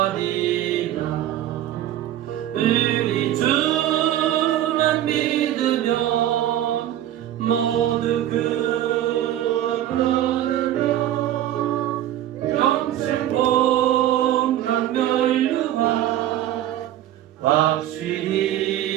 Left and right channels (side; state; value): left; quieter; 12.4 dB